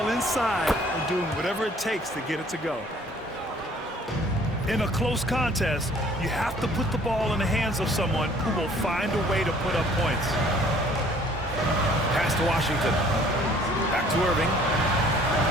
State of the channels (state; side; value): normal; both; correlation 0.56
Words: inside and doing whatever it takes to get it to go. In a close contest, you have to put the ball in the hands of someone who will find a way to put up points. Pass to Washington. Back to Irving.